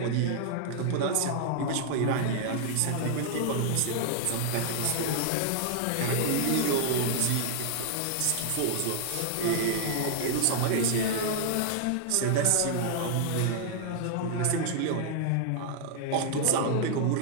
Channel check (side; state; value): both; different; correlation -0.01